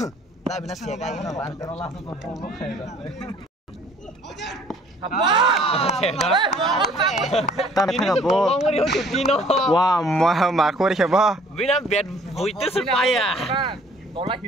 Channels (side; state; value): both; normal; correlation 0.56